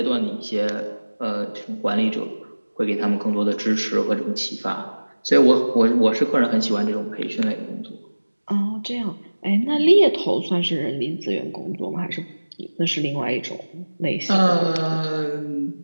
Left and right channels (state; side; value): inverted; both; correlation -1.00